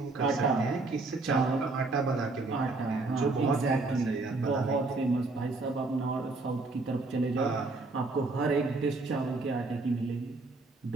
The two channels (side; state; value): left; quieter; 3.4 dB